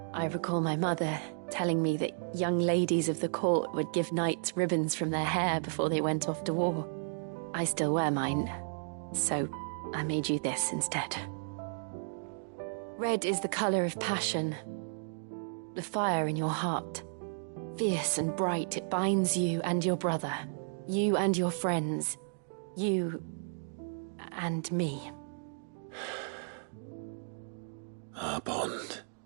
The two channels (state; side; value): silent; left; digital silence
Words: I recall my mother telling me that young ladies of the court would give knights ribbons from their hair before they went off to war. I still wear mine, so I made you this instead. Red is the color of passion, the fire in your heart. Fierce and bright, it binds you and your brother, you and your friends, you and me. Our bond.